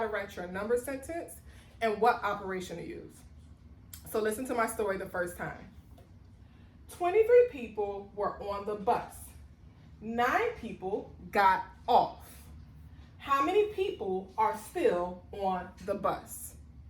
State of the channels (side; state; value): both; identical; correlation 1.00